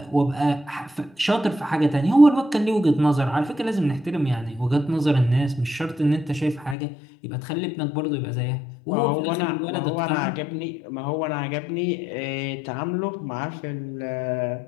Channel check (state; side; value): drops out; right; at 6.8 s